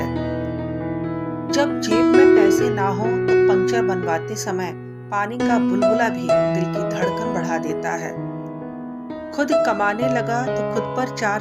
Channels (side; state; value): both; identical; correlation 1.00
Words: जब जेब में पैसे ना हो तो पंक्चर बनवाते समय पानी का बुलबुला भी दिल की धड़कन बढ़ा देता है। खुद कमाने लगा तो खुद पर